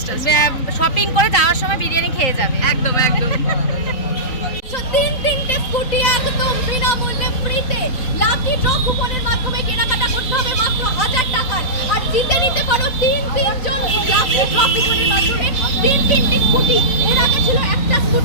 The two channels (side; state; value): right; late; 3.9 ms